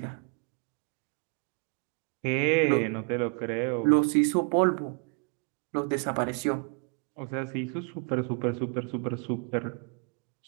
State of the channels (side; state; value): left; quieter; 39.7 dB